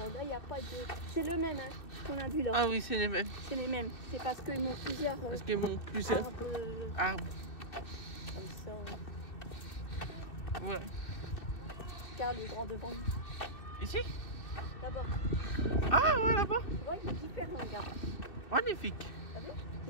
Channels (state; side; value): late; right; 2.6 ms